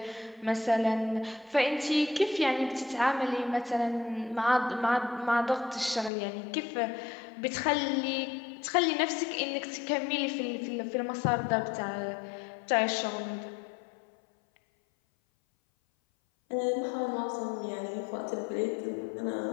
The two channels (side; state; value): right; drops out; at 6.1 s